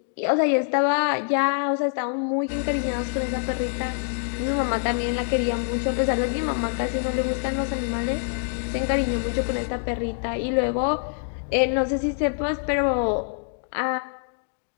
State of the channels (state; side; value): silent; right; digital silence